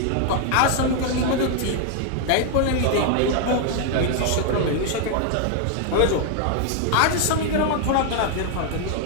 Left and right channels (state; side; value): different; both; correlation 0.00